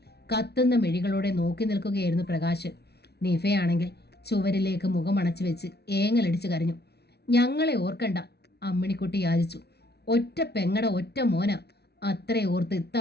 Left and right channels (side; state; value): right; late; 0.48 ms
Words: കത്തുന്ന മിഴികളോടെ നോക്കി നിൽക്കുകയായിരുന്നു പ്രകാശൻ. നിഫയാണെങ്കിൽ ചുവരിലേക്ക് മുഖമണച്ചു വെച്ച് ഏങ്ങലടിച്ച് കരഞ്ഞു. ഞങ്ങളെ ഓർക്കണ്ട, അമ്മിണിക്കുട്ടി യാചിച്ചു. ഒറ്റ പെങ്ങട ഒറ്റ മോന, അത്രേ ഓർത്ത്